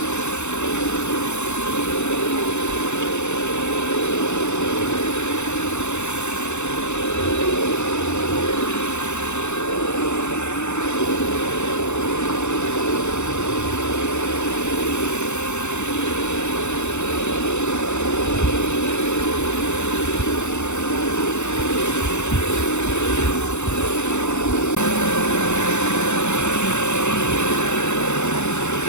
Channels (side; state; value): right; late; 0.83 ms